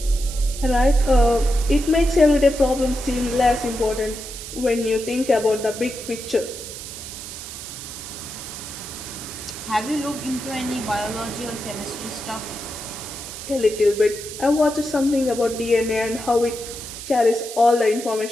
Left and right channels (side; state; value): right; noise; hiss, 10 dB below the sound